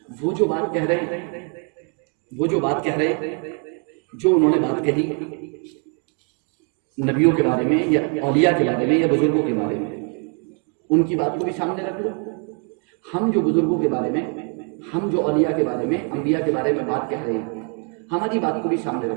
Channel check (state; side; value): quieter; left; 39.5 dB